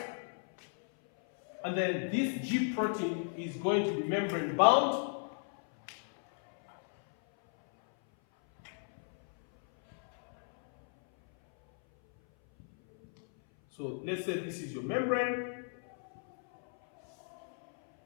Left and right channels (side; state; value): right; silent; 55 dB below the other